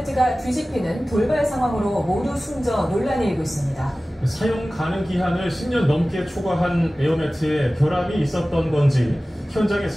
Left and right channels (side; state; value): both; normal; correlation 0.97